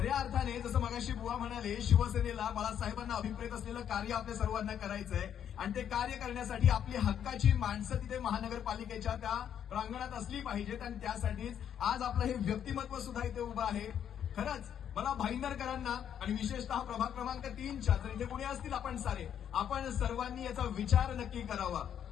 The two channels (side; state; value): right; quieter; 9.2 dB